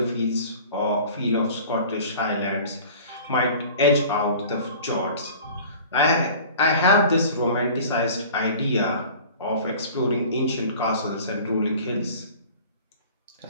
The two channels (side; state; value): both; inverted; correlation -0.44